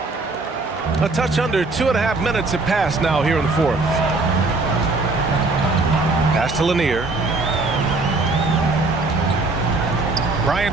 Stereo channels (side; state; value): left; quieter; 3.4 dB